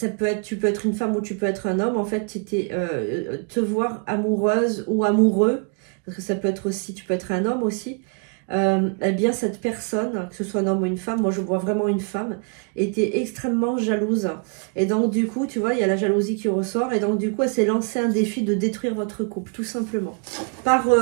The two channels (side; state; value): left; quieter; 37.2 dB